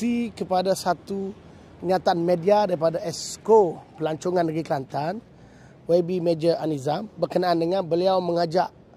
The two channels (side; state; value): both; identical; correlation 1.00